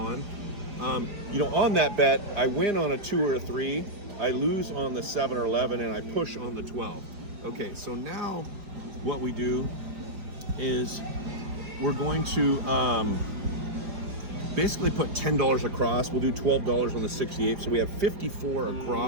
On that bet, I win on a 2 or a 3, I lose on the 7 or 11, and I push on the 12. Okay, so now what we do is we're going to basically put $10 across. We'll do $12 on the 68, so we have 54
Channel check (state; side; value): late; left; 4.9 ms